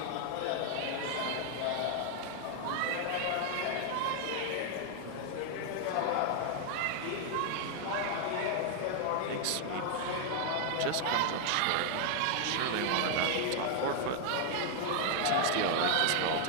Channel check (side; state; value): both; different; correlation 0.00